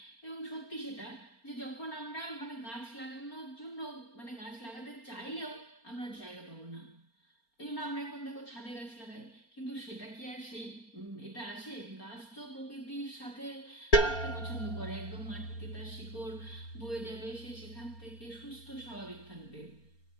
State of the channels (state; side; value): late; right; 4.3 ms